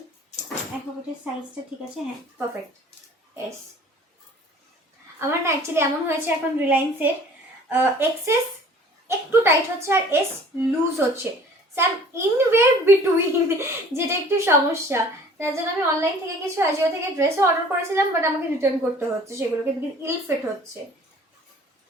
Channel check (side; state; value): both; normal; correlation 0.50